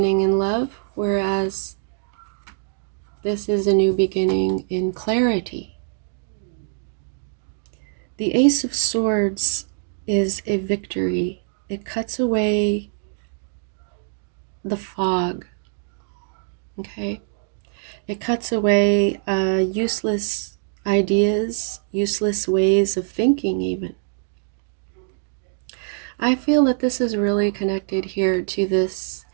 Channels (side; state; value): left; silent; digital silence